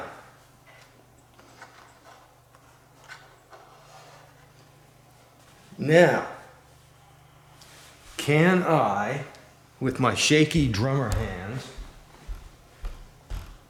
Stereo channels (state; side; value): identical; both; correlation 1.00